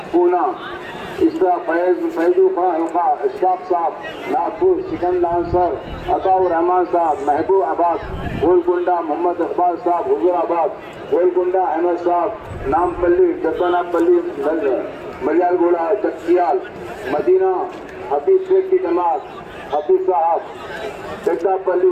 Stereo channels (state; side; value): identical; both; correlation 1.00